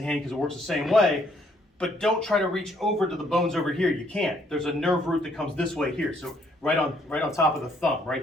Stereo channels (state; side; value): normal; both; correlation 0.68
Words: hand because it works the same way, but don't try to reach over to the bones over here. You can't. There's a nerve root that comes this way here. So right on top of the thumb, right